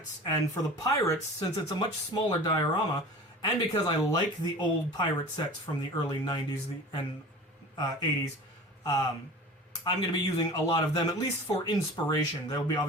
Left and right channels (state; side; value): normal; both; correlation 0.38